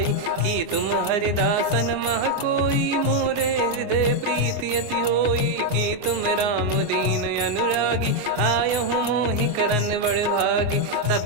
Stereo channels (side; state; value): left; late; 24 ms